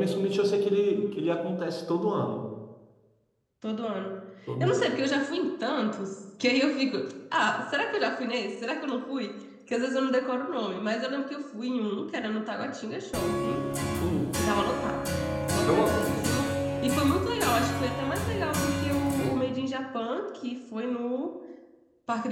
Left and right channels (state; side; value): identical; both; correlation 1.00